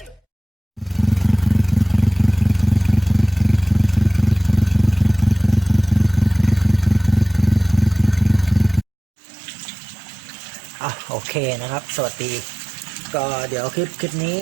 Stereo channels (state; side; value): drops out; left; at 8.8 s